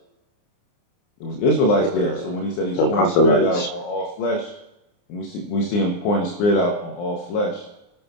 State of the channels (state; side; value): late; right; 29 ms